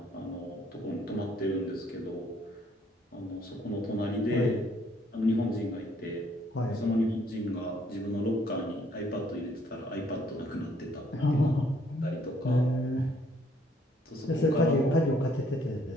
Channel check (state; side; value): normal; both; correlation 0.65